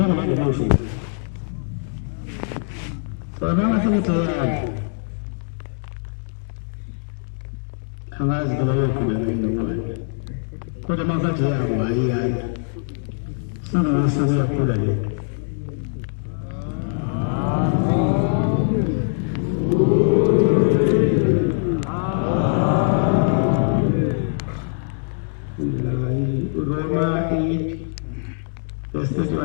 ngibandele ngisho njalo bona ngasemithe yami angazi kuba yoqhubeka inokwani kodwa mangathi yabo ayiyana sekusuku yakhula le Roma 8 verse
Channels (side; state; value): right; silent; digital silence